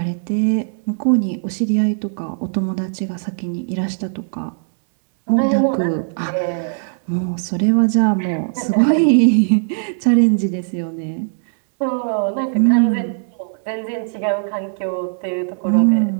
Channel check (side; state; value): left; silent; digital silence